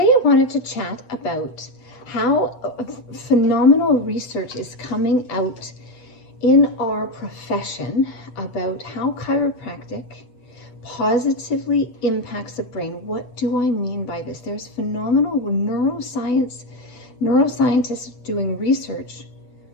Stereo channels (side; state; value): right; late; 8.1 ms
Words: wanted to chat about how phenomenal research is coming out in our profession about how chiropractic positively impacts the brain. What do I mean by this? There's phenomenal neuroscientists doing research.